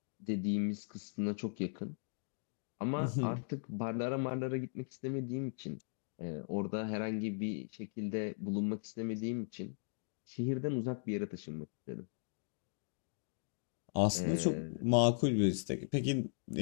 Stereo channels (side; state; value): right; silent; digital silence